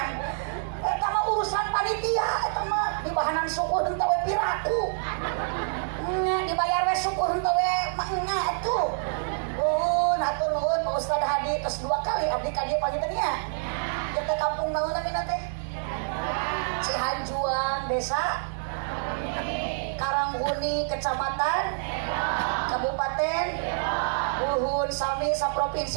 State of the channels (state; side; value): silent; left; 60 dB below the other